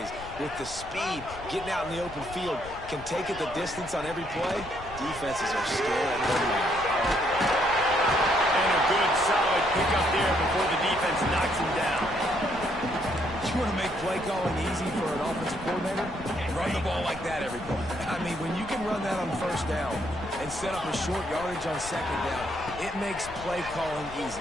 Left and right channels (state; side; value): noise; left; rumble, 16 dB below the sound